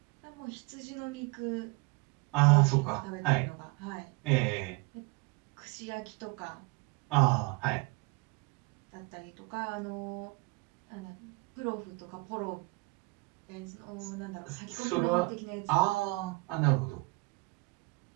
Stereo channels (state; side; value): quieter; left; 26.6 dB